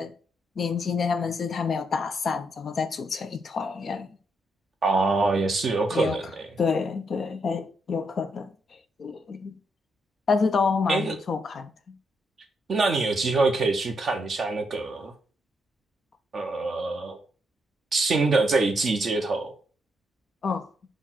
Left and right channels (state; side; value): normal; both; correlation 0.78